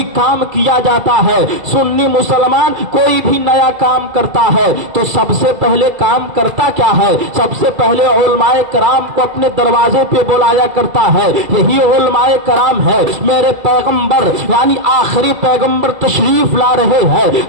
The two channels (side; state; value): left; late; 2.3 ms